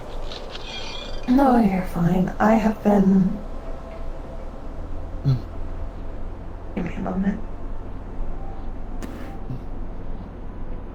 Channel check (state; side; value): identical; both; correlation 1.00